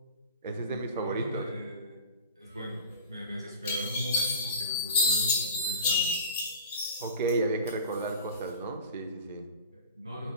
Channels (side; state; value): both; inverted; correlation -0.35